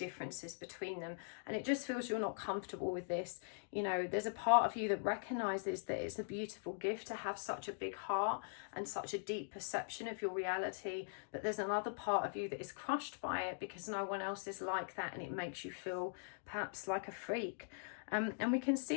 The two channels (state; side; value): silent; right; digital silence